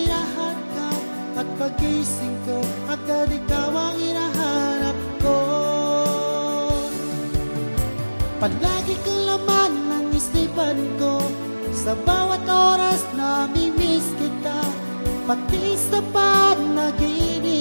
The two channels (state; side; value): inverted; both; correlation -1.00